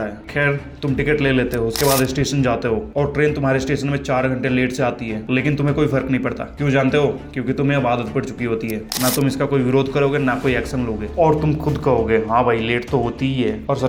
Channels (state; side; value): identical; both; correlation 1.00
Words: है। खैर, तुम टिकट ले लेते हो, उसके बाद स्टेशन जाते हो और ट्रेन तुम्हारे स्टेशन में 4 घंटे लेट से आती है, लेकिन तुम्हें कोई फर्क नहीं पड़ता। क्यों जानते हो? क्योंकि तुम्हें अब आदत पड़ चुकी होती है। ना तुम इसका कोई विरोध करोगे, ना कोई एक्शन लोगे, और तुम खुद कहोगे हाँ भाई लेट तो होती ही है। और